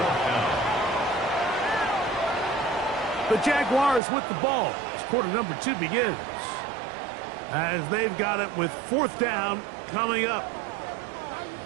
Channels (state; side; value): drops out; left; at 4.0 s